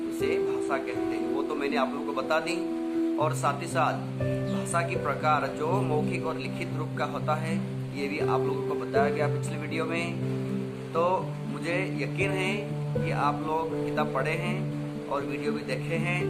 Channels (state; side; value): identical; both; correlation 1.00